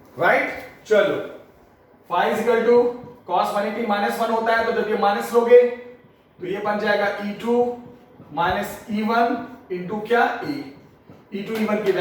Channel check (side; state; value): both; identical; correlation 1.00